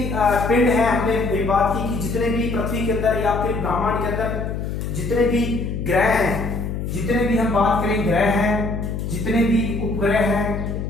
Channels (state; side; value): noise; left; hum, 4 dB below the sound